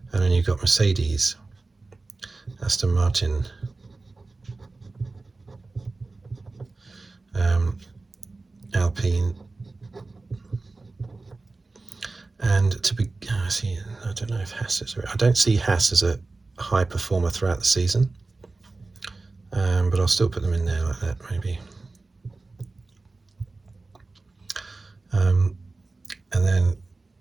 And then you've got Mercedes, Aston Martin, Alpine, and I don't know if Haas is. I don't see Haas as a high performer throughout the season, but I'll still put them in there like that, maybe. And then,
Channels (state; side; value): quieter; left; 3.5 dB